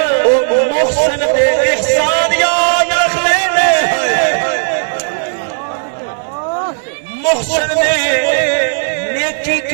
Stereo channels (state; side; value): silent; left; digital silence